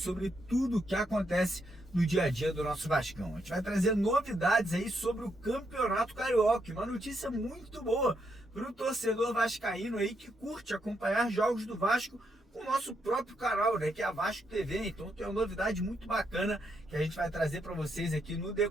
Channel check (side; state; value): both; normal; correlation 0.79